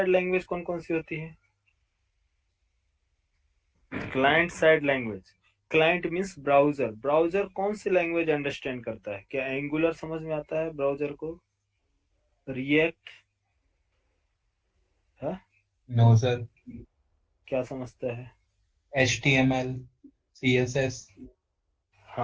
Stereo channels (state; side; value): identical; both; correlation 1.00